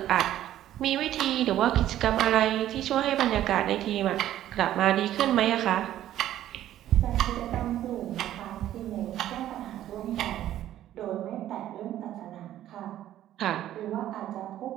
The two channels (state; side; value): quieter; left; 12.6 dB